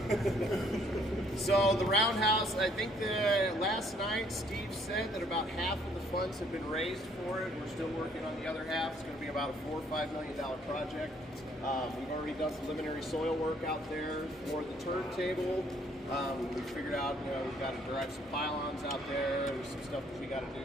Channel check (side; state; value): both; normal; correlation 0.64